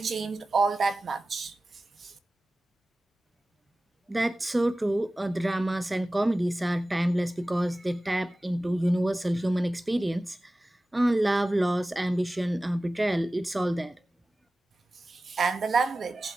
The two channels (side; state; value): both; normal; correlation 0.96